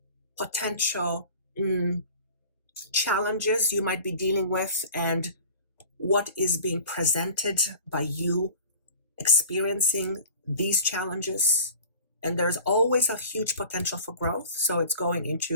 potential challenges you might be dealing with, and what is being presented by you experiencing these challenges. And there's always a huge potential for growth. So it's going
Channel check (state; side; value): inverted; both; correlation -0.42